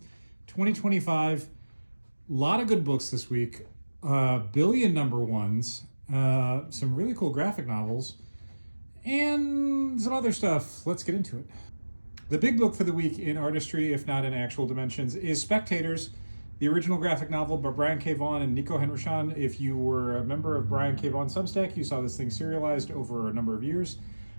2025. A lot of good books this week, billion number ones, some really cool graphic novels, and some other stuff. Let's get into it. The big book for the week in artistry, if not in actual dimensions, is Spectators, the original graphic novel by Brian K. Vaughan and Nico Henrichon. If you were a member of Brian K. Vaughan Substack, you saw this thing serialized over a number of years.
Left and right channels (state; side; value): inverted; both; correlation -1.00